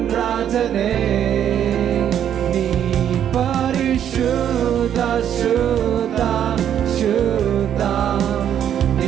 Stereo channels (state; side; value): quieter; left; 9.7 dB